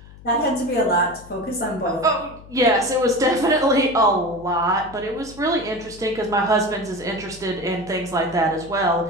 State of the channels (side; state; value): left; noise; hum, 20 dB below the sound